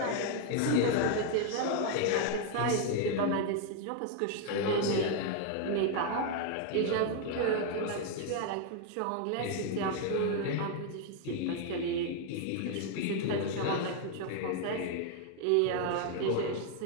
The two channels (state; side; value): different; both; correlation 0.00